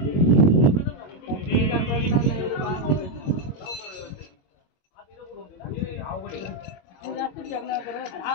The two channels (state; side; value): late; right; 22 ms